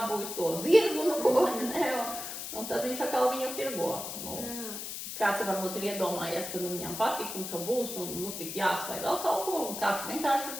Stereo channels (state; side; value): noise; left; hiss, 7 dB below the sound